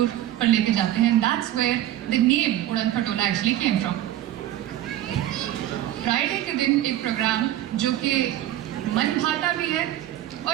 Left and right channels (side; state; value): left; quieter; 13.2 dB